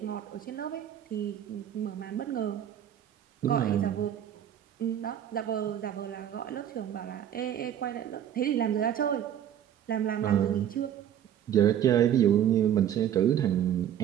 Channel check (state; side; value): quieter; left; 10.2 dB